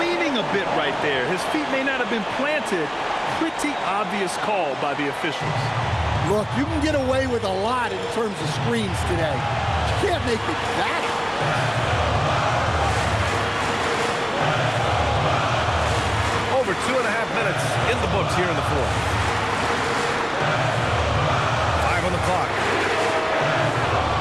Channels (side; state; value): both; identical; correlation 1.00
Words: a bit right there. His feet may not have been planted. Pretty obvious call by the officials. Look, you can get away with a lot in terms of screens today. You can't make it that. Over 2.5 minutes in the books here in the fourth. 5 on the clock.